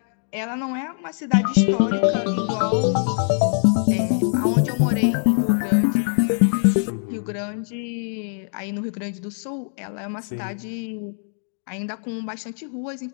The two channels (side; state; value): right; silent; 64 dB below the other